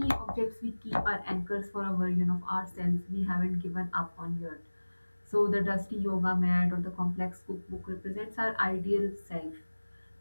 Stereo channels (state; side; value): inverted; both; correlation -1.00